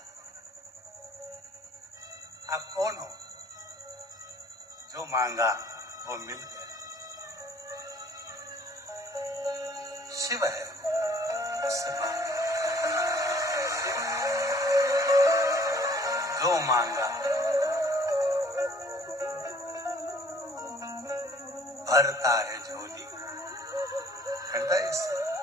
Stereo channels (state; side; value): normal; both; correlation 0.56